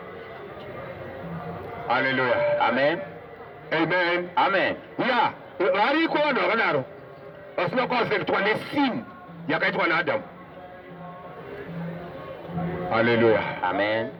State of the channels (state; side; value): identical; both; correlation 1.00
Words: Haleluya. Amen. Amen. Amen. Ya, variko vanhu vakadaro vasina kuafektwa nesini yakaitwa naAdamu. Haleluya. Amen.